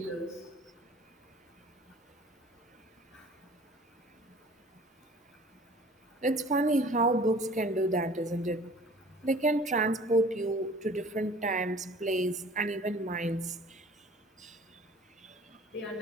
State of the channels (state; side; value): normal; both; correlation 0.48